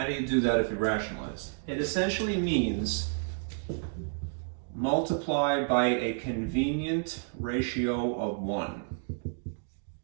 do you do that if you rationalize? It essentially means multiply by a convenient ratio of 1.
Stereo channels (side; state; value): left; silent; digital silence